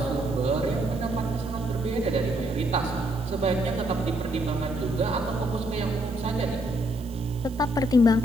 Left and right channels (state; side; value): noise; right; hiss, 23 dB below the sound